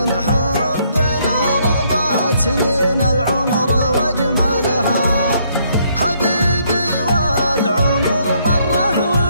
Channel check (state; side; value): inverted; both; correlation -0.70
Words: حبنا رغبات سنين العمر واجملها. حبيبي والعمر مره